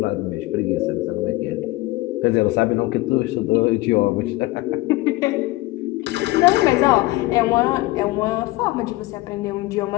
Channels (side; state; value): right; quieter; 19.7 dB